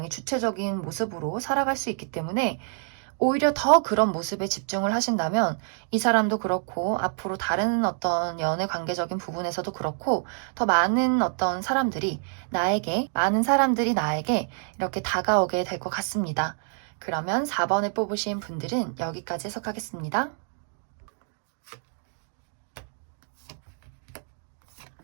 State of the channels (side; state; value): left; silent; 56 dB below the other